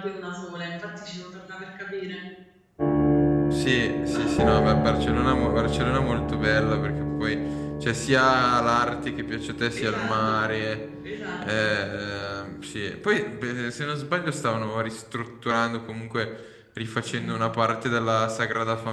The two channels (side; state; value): both; identical; correlation 1.00